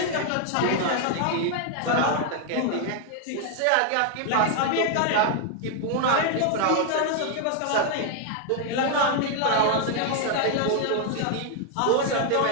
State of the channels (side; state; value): both; different; correlation 0.00